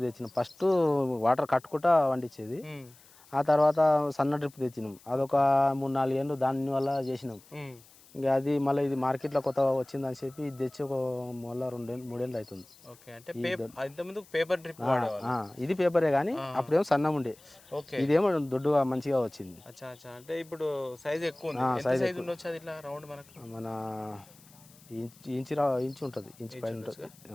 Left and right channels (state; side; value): noise; left; hiss, 25 dB below the sound